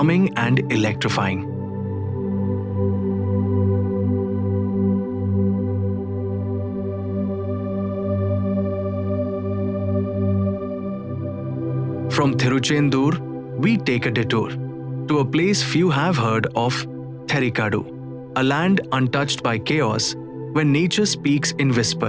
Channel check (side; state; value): left; noise; rumble, 29 dB below the sound